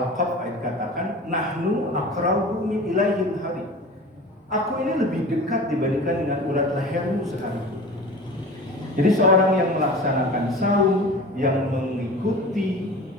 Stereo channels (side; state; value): both; normal; correlation 0.37